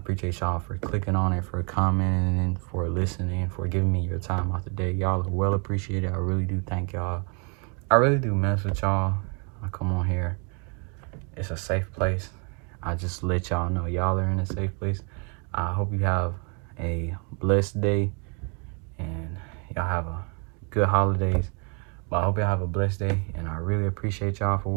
y'all for clicking on it, for commenting, for listening, for giving me your time out the day. Y'all are well appreciated. I really do thank y'all. I really do mess with y'all. I come on here. It's a safe place. I just let y'all know y'all are in a safe place. I hope you have a blessed day and y'all have a good holidays. But I hope y'all have a blessed day, and I really appreciate y'all for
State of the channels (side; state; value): left; quieter; 36.5 dB